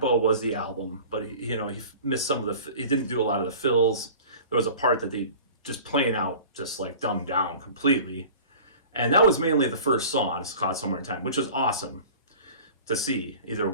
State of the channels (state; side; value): inverted; both; correlation -0.41